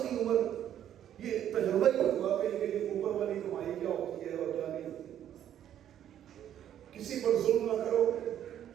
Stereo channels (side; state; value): left; quieter; 10.6 dB